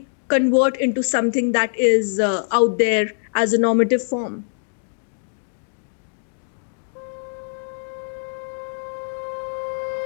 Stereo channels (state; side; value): silent; right; digital silence